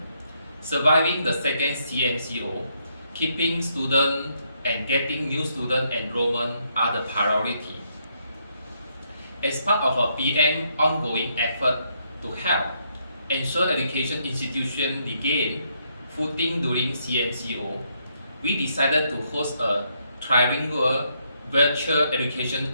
Surviving the second CMCO, keeping students and getting new student enrollment are the priority. As part of a PEEAM ongoing effort to help ensure education institutions regain footing during CMCO, we decided to host a trilingual virtual education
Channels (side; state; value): both; inverted; correlation -0.75